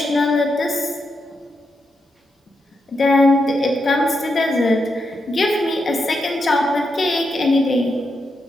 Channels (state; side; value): normal; both; correlation 0.84